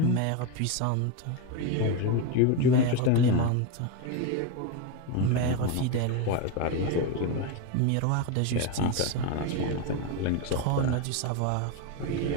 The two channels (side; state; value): both; different; correlation 0.03